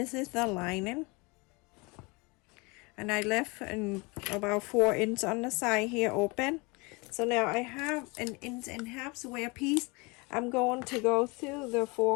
is the lining. And I left about 4 inches on the side here open. So now I have an 1.5 inch square piece. I'm going to go through the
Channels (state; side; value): quieter; right; 27.4 dB